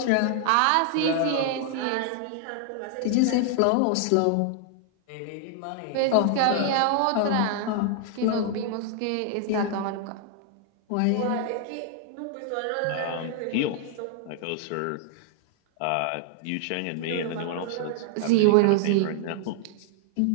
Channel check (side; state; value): both; different; correlation 0.00